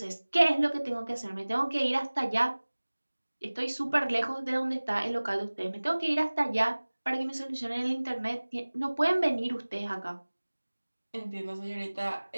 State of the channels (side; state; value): both; inverted; correlation -1.00